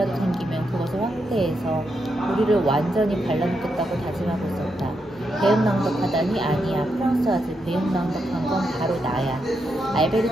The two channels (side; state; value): both; normal; correlation 0.83